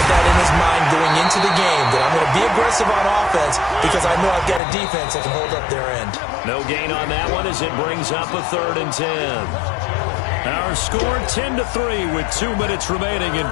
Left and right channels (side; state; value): right; drops out; at 4.6 s